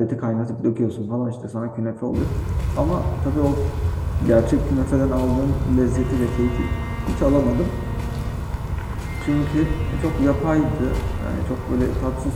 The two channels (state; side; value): identical; both; correlation 1.00